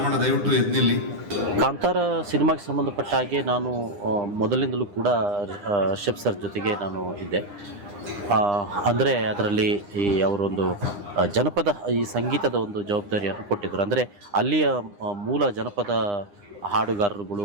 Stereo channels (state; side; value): late; left; 9.9 ms